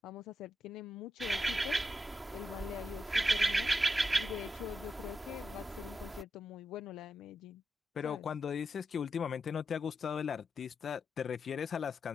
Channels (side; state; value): both; normal; correlation 0.87